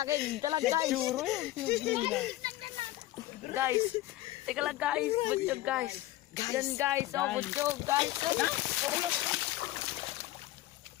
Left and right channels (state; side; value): quieter; right; 16.3 dB